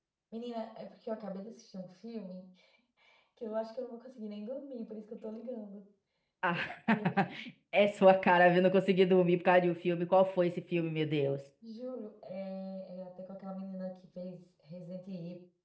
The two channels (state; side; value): identical; both; correlation 1.00